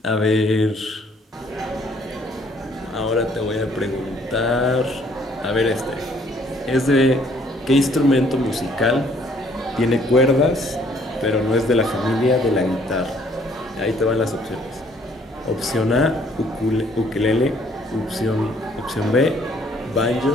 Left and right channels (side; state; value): both; normal; correlation 0.62